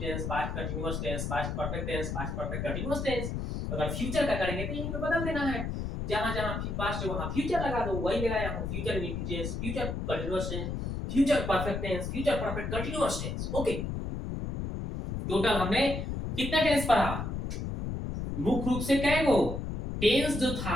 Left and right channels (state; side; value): noise; left; rumble, 3 dB below the sound